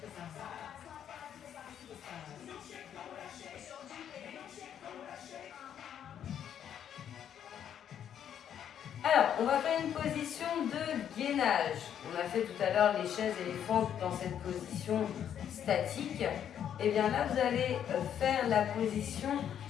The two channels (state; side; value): quieter; right; 9.4 dB